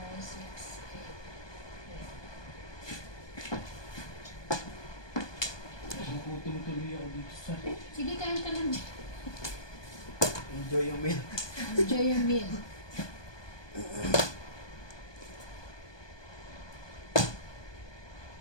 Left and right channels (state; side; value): late; right; 1.2 ms